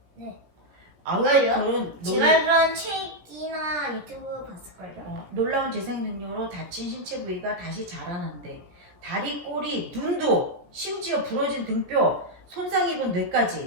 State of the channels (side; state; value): left; late; 17 ms